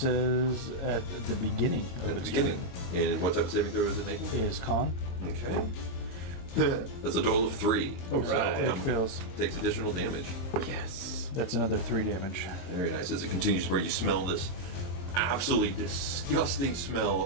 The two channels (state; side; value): late; right; 22 ms